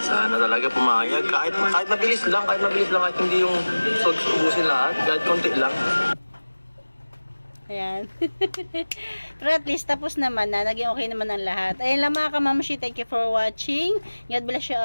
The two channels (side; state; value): both; inverted; correlation -1.00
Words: Sana talaga pumayag. Kahit mabilis lang, kahit hindi yung ubusin lahat, kahit konti lang. Ayan. Pero at least tapos naman na, naging okay naman ang lahat. Ayun lang mga kamamushi, thank you for watching. God bless you